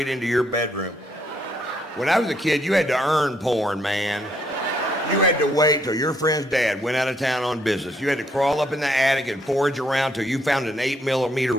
into your bedroom. When I was a kid, you had to earn porn, man. You had to wait till your friend's dad went out of town on business. You had to crawl up in the attic and forage around till you found an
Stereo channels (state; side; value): normal; both; correlation 0.71